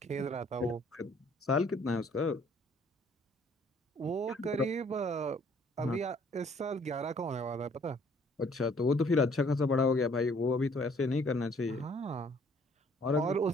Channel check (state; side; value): normal; both; correlation 0.60